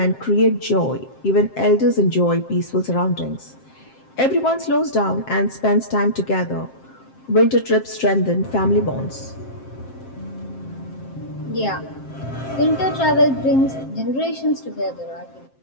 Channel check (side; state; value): right; late; 7.6 ms